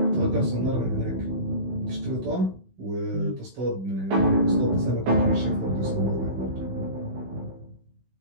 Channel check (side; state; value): left; late; 16 ms